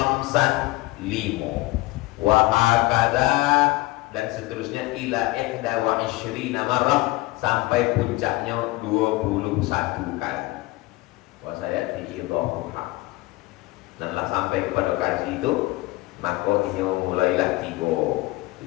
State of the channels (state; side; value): quieter; right; 20.1 dB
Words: 5. Wa hakada, dan seterusnya ila ihda wa ishrina marrah, sampai puncaknya 21 kali. Wa saya diidhafuha. Dan lah sampai kepada kaji itu, maka ini mulailah 3,